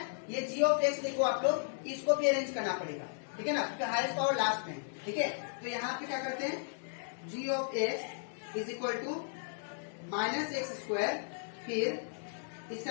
ये जी ऑफ एक्स देखो आप लोग, इसको भी अरेंज करना पड़ेगा। ठीक है ना, क्योंकि हाईएस्ट पावर लास्ट में। ठीक है, तो यहाँ पे क्या करते हैं, g of x is equal to minus x², फिर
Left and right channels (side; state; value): right; silent; digital silence